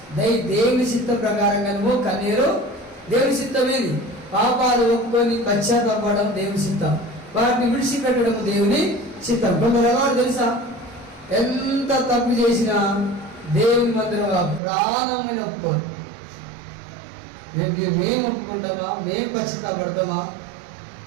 దేవుని చిత్త ప్రకారంగా నువ్వు కన్నీరు. దేవుని చిత్తం ఏది? పాపాలు ఒప్పుకొని పశ్చాత్తాపడడం దేవుని చిత్తం, వాటిని విడిచిపెట్టడం దేవుని చిత్తం. కొందరు ఎవరు తెలుసా? ఎంత తప్పు చేసినా దేవుని మందిరంగా ప్రాణమైన ఒప్పుకోరు. మేము ఒప్పుకుంటామా, మేము పశ్చాత్తాపడతామా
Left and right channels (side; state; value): left; drops out; at 14.6 s